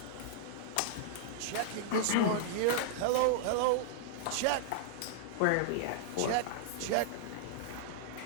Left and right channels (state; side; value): different; both; correlation -0.01